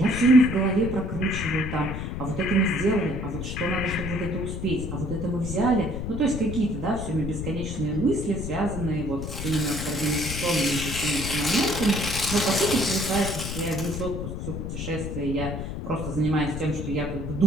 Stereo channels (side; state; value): left; noise; rumble, 5 dB below the sound